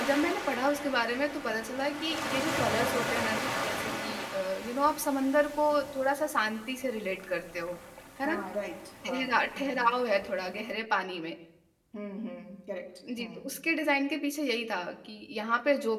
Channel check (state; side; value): identical; both; correlation 1.00